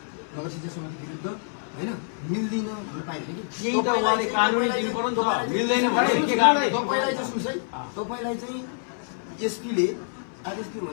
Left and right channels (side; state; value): right; silent; 60 dB below the other